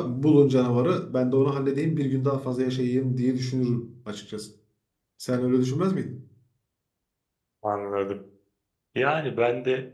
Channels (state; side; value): identical; both; correlation 1.00